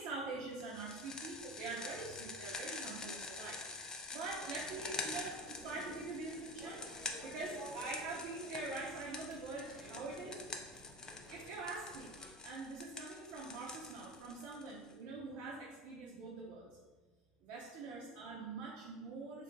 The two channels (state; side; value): normal; both; correlation 0.28